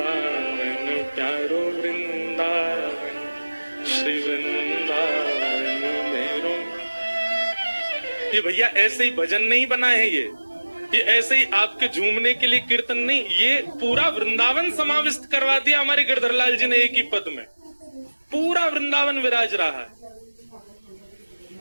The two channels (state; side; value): inverted; both; correlation -1.00